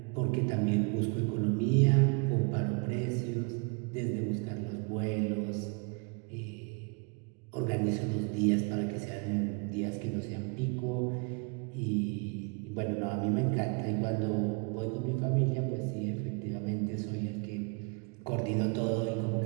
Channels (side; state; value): left; quieter; 33.4 dB